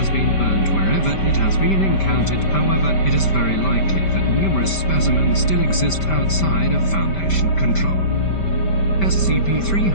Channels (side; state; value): right; late; 5.1 ms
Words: been burned wherever it has been encountered. However, it is very likely that numerous specimens still exist outside of Foundation control.